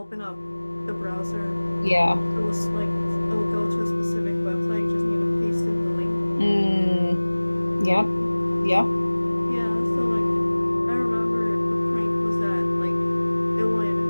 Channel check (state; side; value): inverted; both; correlation -1.00